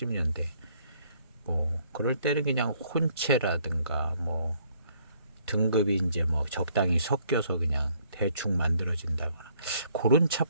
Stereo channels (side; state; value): both; inverted; correlation -0.65